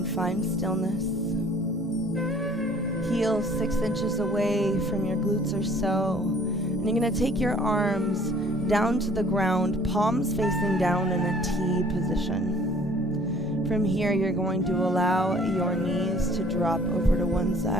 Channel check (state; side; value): normal; both; correlation 0.54